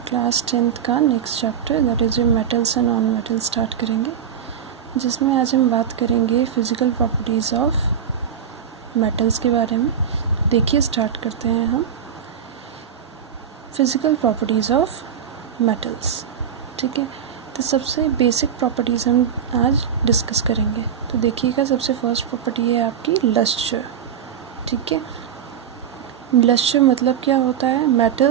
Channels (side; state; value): left; quieter; 8.2 dB